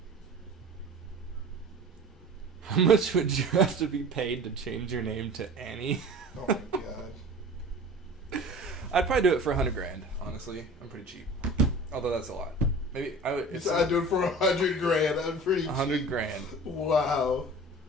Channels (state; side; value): normal; both; correlation 0.40